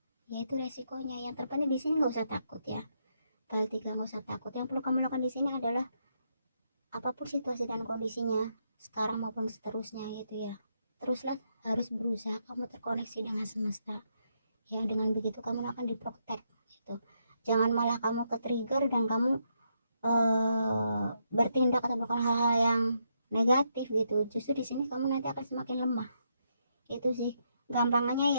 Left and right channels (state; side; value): inverted; both; correlation -0.78